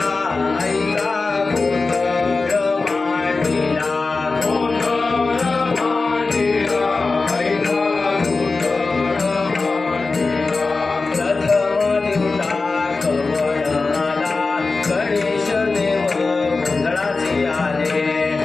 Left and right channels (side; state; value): right; quieter; 3.9 dB